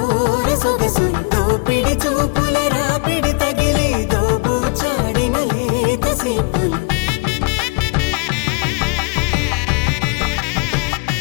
సొగసులు దోపిడి చూపుల రాపిడి తగిలి దోబూచాడిన లేత సీపులు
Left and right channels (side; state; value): right; quieter; 30.2 dB